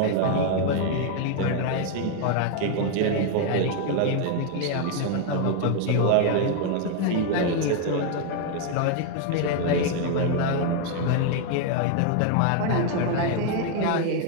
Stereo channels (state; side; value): different; both; correlation 0.00